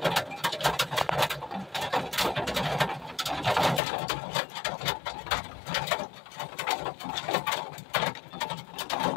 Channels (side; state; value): right; drops out; at 3.8 s